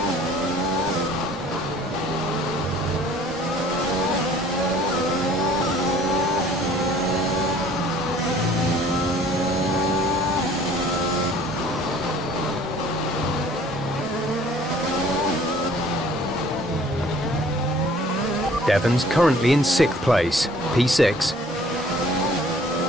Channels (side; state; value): both; normal; correlation 0.54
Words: Devon's currently in 6th place, P6.